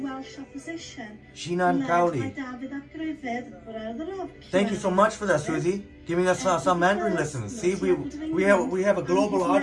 Jinan Kauli. Thank you so much for that, Susie. Giving us some Mandarin lessons. See, we have a global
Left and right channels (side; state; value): both; identical; correlation 1.00